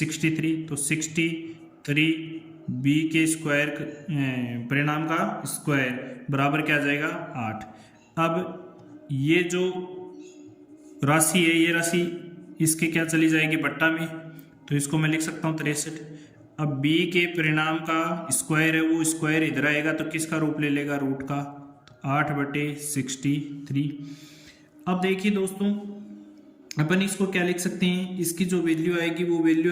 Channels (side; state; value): both; identical; correlation 1.00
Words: तो 63 बी के स्क्वायर परिणाम का स्क्वायर बराबर क्या आ जाएगा 8। अब ये जो राशि है ये राशि इसके क्या चली जाएगी बट्टा में, तो इसको मैं लिख सकता हूँ 63। अब b के परिणाम का स्क्वायर है वो स्क्वायर इधर आएगा तो किसका रूप ले लेगा रूट का, तो 8/63। अब देखिए दोस्तों अपन इसको क्या लिख सकते हैं, इसकी जो वैल्यू आएगी वो